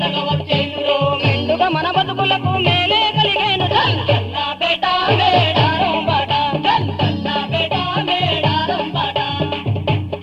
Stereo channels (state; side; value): identical; both; correlation 1.00